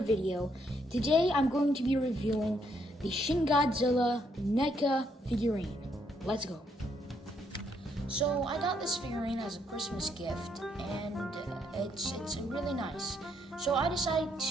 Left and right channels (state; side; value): normal; both; correlation 0.73